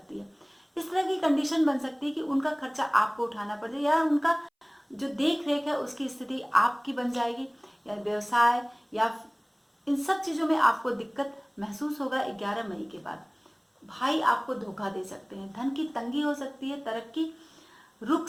है। इस तरह की कंडीशन बन सकती है कि उनका खर्चा आपको उठाना पड़ जाए, या उनका जो देख रेख है उसकी स्थिति आपकी बन जाएगी, या व्यवसाय या इन सब चीज़ों में आपको दिक्कत महसूस होगा। 11 मई के बाद भाई आपको धोखा दे सकते हैं, धन की तंगी हो सकती है, तरक्की रुक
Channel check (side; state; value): both; identical; correlation 1.00